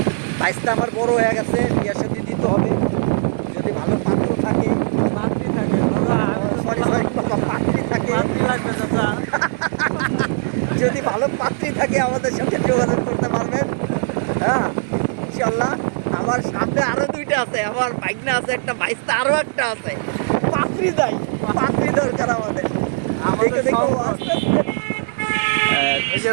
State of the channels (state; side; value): silent; left; digital silence